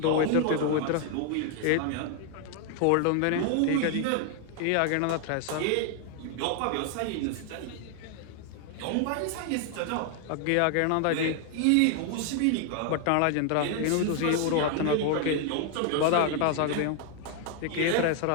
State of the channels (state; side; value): different; both; correlation 0.00